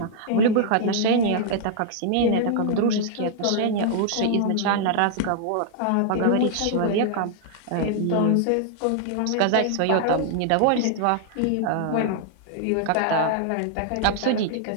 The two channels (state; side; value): different; both; correlation -0.01